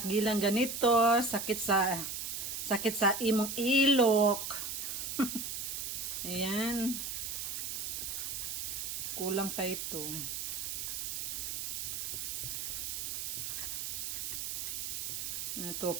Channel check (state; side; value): noise; right; hiss, 3 dB below the sound